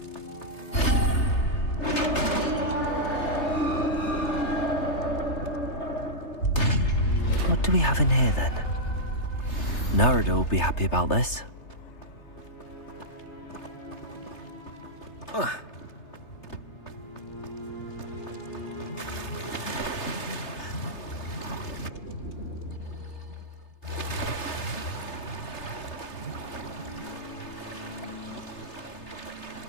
What do we have in here then? Nerida will be happy about this.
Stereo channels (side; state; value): right; late; 3.3 ms